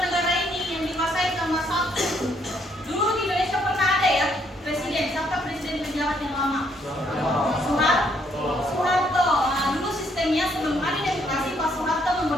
negara ini yang dikuasai sama satu. Dulu di Indonesia pernah ada ya presiden, siapa presiden penjabat yang lama? Soeharto. Nah, dulu sistemnya sebelum ada demokrasi, Pak Soeharto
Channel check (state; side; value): normal; both; correlation 0.70